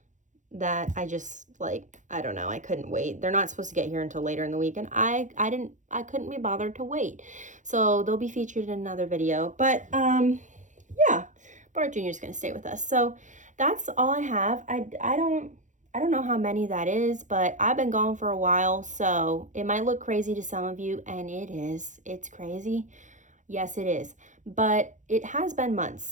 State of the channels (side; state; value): left; late; 0.36 ms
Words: that I just, like, I don't know, I couldn't wait. They're not supposed to get here until later in the week, and I couldn't be bothered to wait. So they'll be featured in another video. But yeah, Bart Jr. is going to stay with us. So that's all I have. I don't know how many that is, but I've been gone for a while, so it might look crazy to some of you, and it is. It's crazy. Yes, it is. But it has been